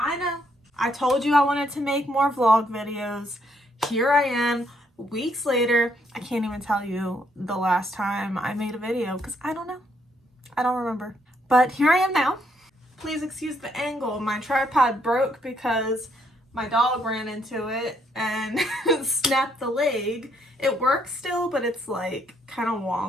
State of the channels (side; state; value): both; normal; correlation 0.71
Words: I told you I wanted to make more vlog videos. Here I am, weeks later. I can't even tell you the last time I made a video because I don't know. I don't remember. But here I am now. Please excuse the angle. My tripod broke because my dog ran into it and snapped the leg. It works still, but it's like kind of